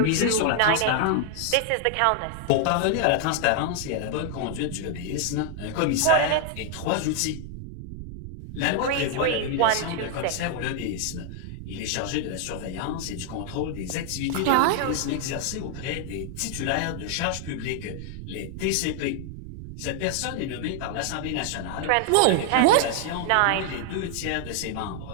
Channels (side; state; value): both; different; correlation 0.00